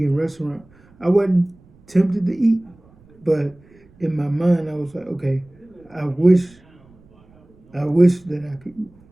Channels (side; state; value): right; noise; rumble, 29 dB below the sound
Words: restaurant. I wasn't tempted to eat, but in my mind I was like, okay, I wish that I could eat